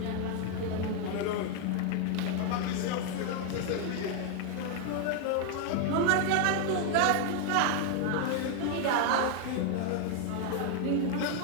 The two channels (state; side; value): different; both; correlation 0.01